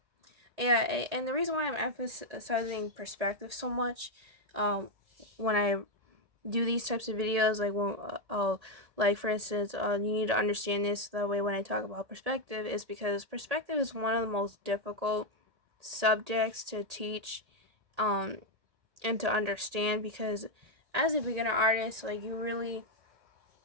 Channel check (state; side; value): late; left; 1.8 ms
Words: yeah, and the reason why I'm emphasizing perspective so much, when I do these types of videos, like when like for instance, you need to understand this that way when I talk about perspective, is because perspective is one of the most difficult subjects to teach, um, and to understand, because as a beginner artist, like you really,